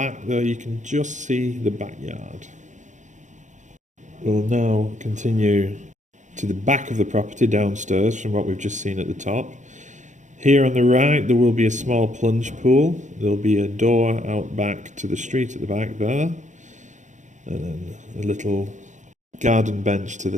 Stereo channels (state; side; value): late; left; 0.35 ms